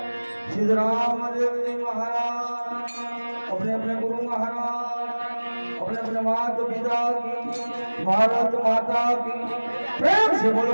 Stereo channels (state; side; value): inverted; both; correlation -1.00